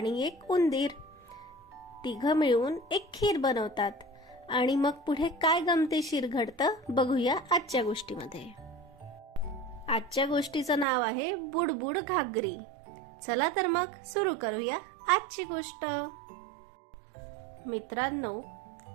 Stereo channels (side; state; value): left; drops out; at 10.9 s